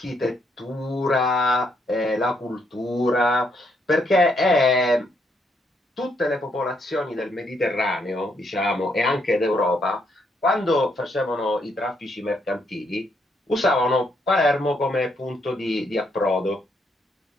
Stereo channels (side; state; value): both; normal; correlation 0.75